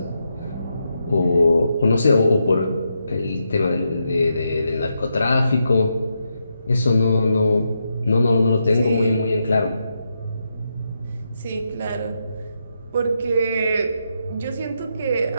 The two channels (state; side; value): inverted; both; correlation -0.83